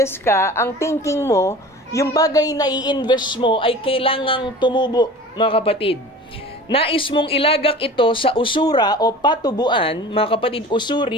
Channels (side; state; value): both; normal; correlation 0.40